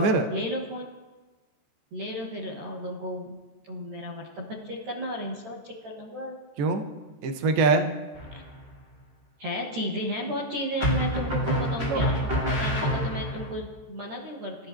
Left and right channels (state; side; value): late; left; 14 ms